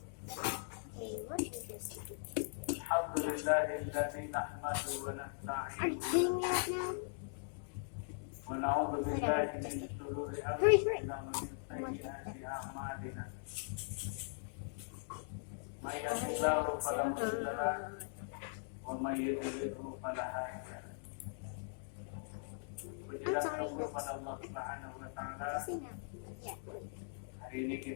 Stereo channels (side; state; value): right; silent; digital silence